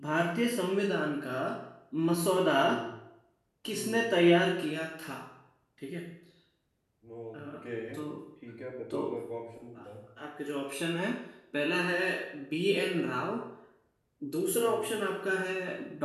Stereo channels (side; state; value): both; identical; correlation 1.00